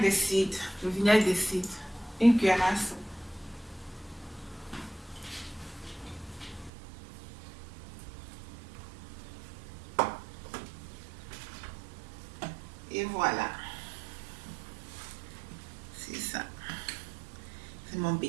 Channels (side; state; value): left; drops out; at 6.7 s